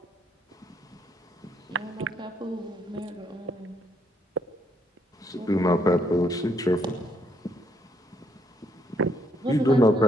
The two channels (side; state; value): both; normal; correlation 0.72